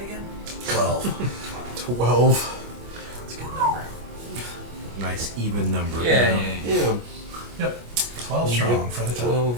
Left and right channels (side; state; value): left; late; 25 ms